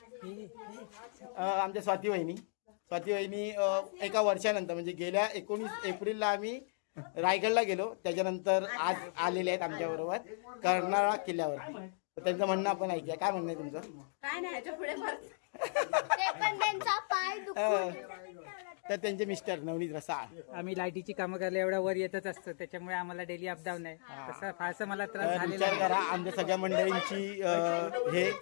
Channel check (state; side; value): silent; right; digital silence